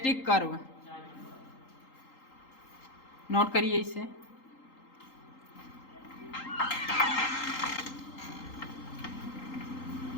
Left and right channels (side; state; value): right; late; 3.8 ms